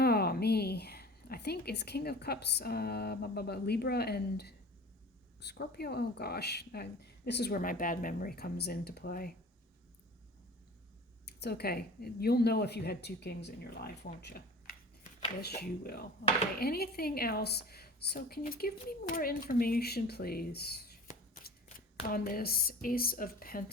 me. I think it's King of Cups, Libra and Scorpio. Oh gosh, this is where my bad memory comes into play. It's okay. You'll know if you had two kings in your life, won't you? Yes, you will. Okay, anything else? So can you give me more information, please, on this Ace of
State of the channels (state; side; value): normal; both; correlation 0.40